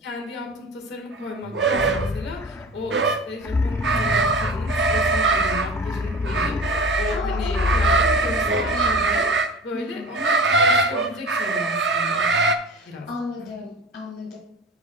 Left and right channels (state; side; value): normal; both; correlation 0.36